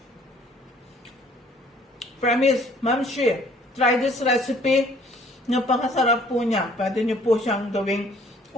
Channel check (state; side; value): normal; both; correlation 0.58